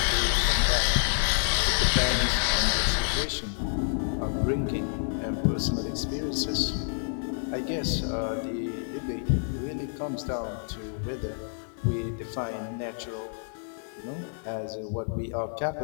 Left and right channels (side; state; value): right; silent; digital silence